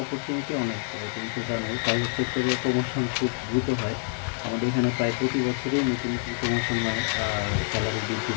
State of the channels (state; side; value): silent; right; 60 dB below the other